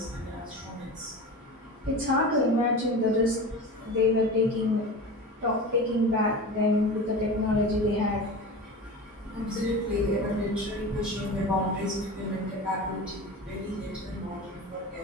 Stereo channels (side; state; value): both; normal; correlation 0.31